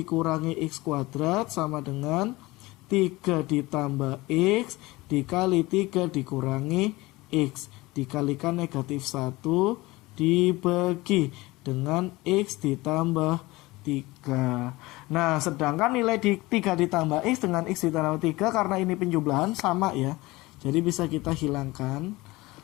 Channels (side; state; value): right; quieter; 20.9 dB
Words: X kuadrat sama dengan 3 ditambah X dikali 3 dikurangi X. Dikalikan negatif 1 dibagi dengan X ditambah 3. Nah, sedangkan nilai 3 ditambah X dengan X ditambah 3, karena ini penjumlahan sama ya, jadi bisa kita hilangkan.